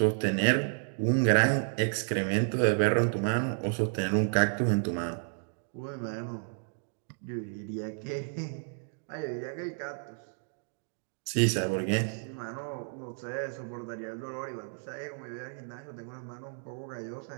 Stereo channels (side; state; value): left; silent; 57 dB below the other